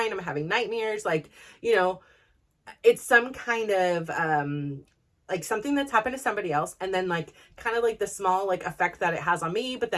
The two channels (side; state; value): both; identical; correlation 1.00